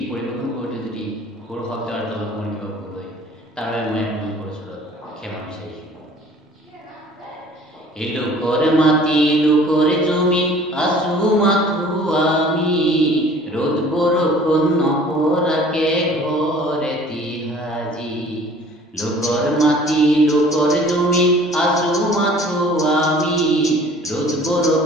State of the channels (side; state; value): both; normal; correlation 0.50